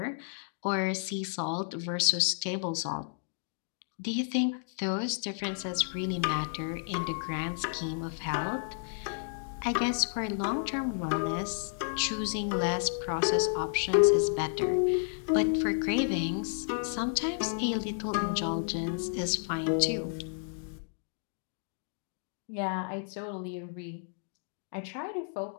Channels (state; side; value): silent; right; digital silence